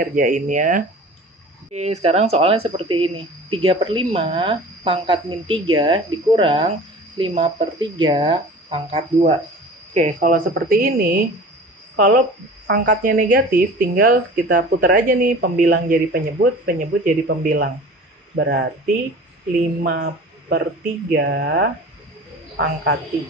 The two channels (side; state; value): both; normal; correlation 0.40